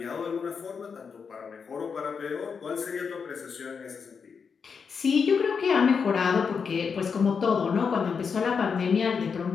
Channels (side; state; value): right; quieter; 5.9 dB